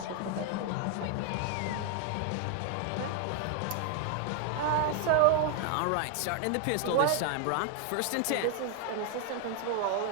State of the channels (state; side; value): different; both; correlation 0.01